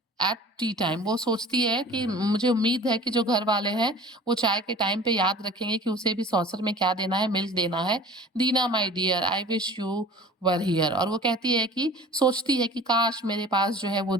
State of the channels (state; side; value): normal; both; correlation 0.43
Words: at tea time. वो सोचती है कि मुझे उम्मीद है कि जो घर वाले हैं वो चाय के टाइम पे याद रखेंगे कि उसे भी सॉसर में क्या देना है, मिल्क देना है। Dinah my dear I wish you were here, और वो कहती है कि सोचती है कि काश मेरे पास जो है वो